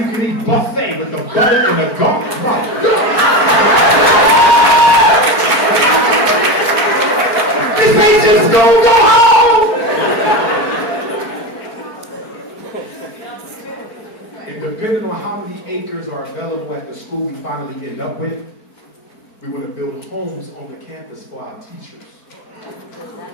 can eat buffet with the butter and the garlic. My God. This ain't just school, go home! And depending on how many acres are available at the school we finally end up with, We want to build homes on the campus for our teachers.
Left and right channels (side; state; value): right; late; 4.5 ms